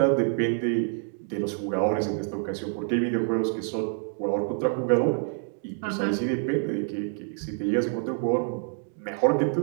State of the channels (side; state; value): left; silent; 60 dB below the other